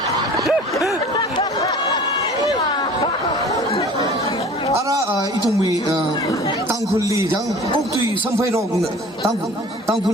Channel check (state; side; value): normal; both; correlation 0.45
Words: 이tum 땅굴리 장 꼭두이 선포로 땅굴